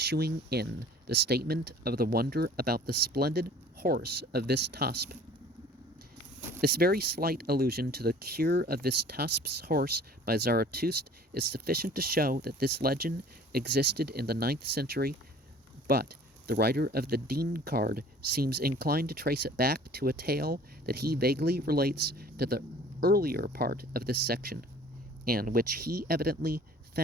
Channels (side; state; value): both; normal; correlation 0.49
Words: in the statement of the wonder about the splendid horse of Vistasp. This very slight allusion to the cure of Vistasp's horse by Zarathustra is sufficient to show that this legend existed in the 9th century, but the writer of the Dean card seems inclined to trace it back to a tale that he vaguely relates to the earlier part of this section, and which he evidently